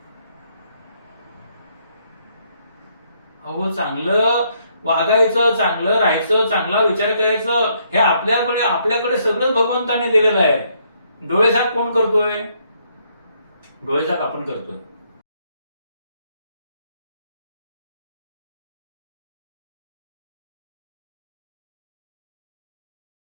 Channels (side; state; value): both; inverted; correlation -0.71